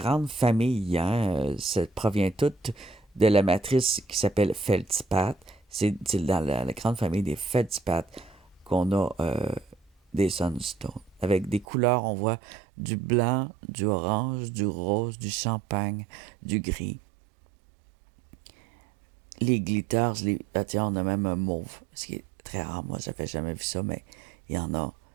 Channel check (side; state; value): left; drops out; at 11.7 s